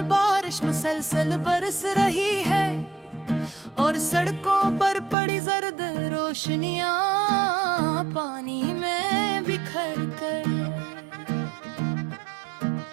बारिश मुसलसल बरस रही है और सड़कों पर पड़ी जर्द रोशनियां पानी में बिखर कर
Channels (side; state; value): left; drops out; at 5.2 s